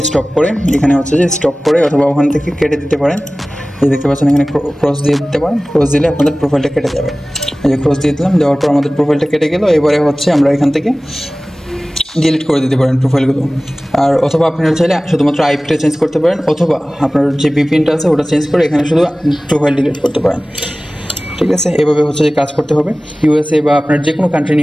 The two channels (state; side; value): normal; both; correlation 0.97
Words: স্টপ করে এখানে হচ্ছে যে স্টপ করে অথবা ওখান থেকে কেটে দিতে পারেন। এই দেখতে পাচ্ছেন এখানে ক্রস দিয়ে দিতে পারেন। ক্রস দিলে আপনাদের প্রোফাইলটা কেটে যাবে। এই যে ক্রস দিয়ে দিলাম, দেওয়ার পর আমাদের প্রোফাইলটা কেটে গেল। এবারে হচ্ছে আমরা এখান থেকে ডিলিট করে দিতে পারেন প্রোফাইলগুলো। আর অথবা আপনারা চাইলে শুধুমাত্র আইপিটা চেঞ্জ করতে পারেন, অথবা আপনার যে ভিপিএনটা আছে ওটা চেঞ্জ করে এখানে শুধু প্রোফাইল ডিলিট করতে পারেন। ঠিক আছে, এভাবে হচ্ছে যে কাজ করতে হবে। ইউএসএ বা আপনার যে কোনো কান্ট্রি